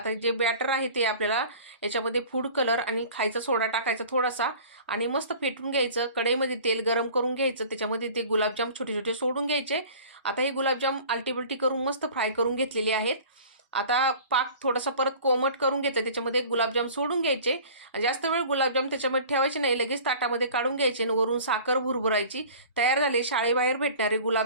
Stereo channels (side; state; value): both; inverted; correlation -0.44